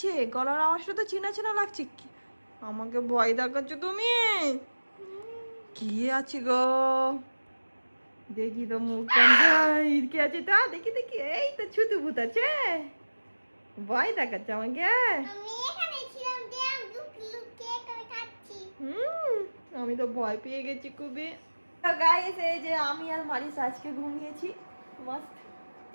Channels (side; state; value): both; inverted; correlation -1.00